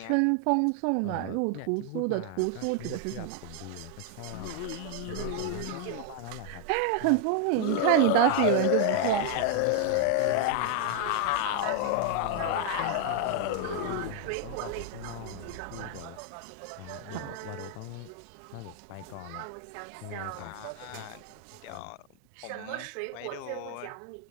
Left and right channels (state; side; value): different; both; correlation 0.00